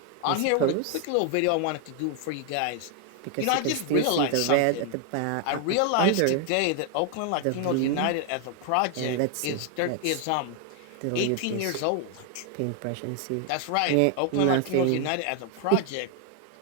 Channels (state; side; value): different; both; correlation 0.00